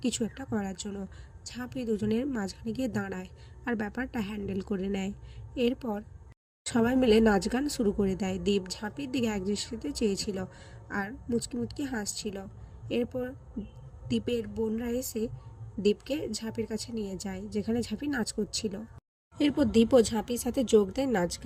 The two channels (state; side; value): identical; both; correlation 1.00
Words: কিছু একটা করার জন্য। ঝাঁপি দুজনের মাঝখানে গিয়ে দাঁড়ায় আর ব্যাপারটা হ্যান্ডেল করে নেয়। এরপর সবাই মিলে নাচ গান শুরু করে দেয়। দীপ ঝাঁপির দিকে একদৃষ্টিতে চেয়েছিল আর মুচকি মুচকি হাসছিল। এরপর দীপের বোনরা এসে দীপকে ঝাঁপির কাছে নিয়ে যায়, যেখানে ঝাঁপি নাচ করছিল। এরপর দীপও ঝাঁপির সাথে যোগ দেয় নাচ